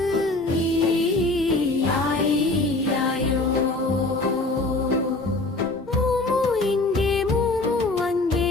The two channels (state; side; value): quieter; right; 3.0 dB